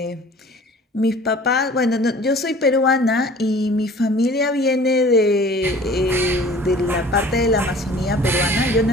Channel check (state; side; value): normal; both; correlation 0.48